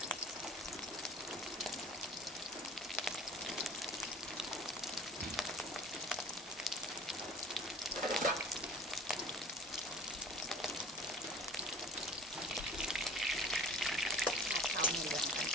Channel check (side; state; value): both; normal; correlation 0.44